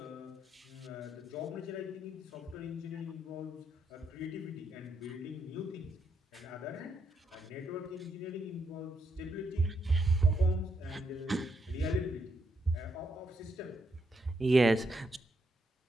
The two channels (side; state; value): both; normal; correlation 0.78